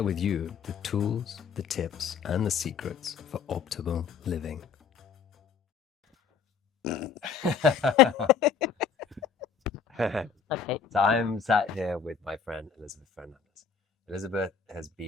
with you the tools, the tips, and the secrets for optimal living. Okay. So I'm sat here with my friend Elisabete Fernandes. Elisabeth has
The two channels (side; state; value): right; quieter; 6.4 dB